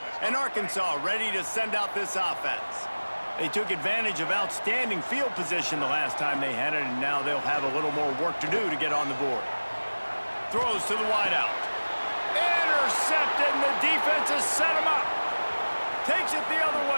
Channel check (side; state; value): both; inverted; correlation -1.00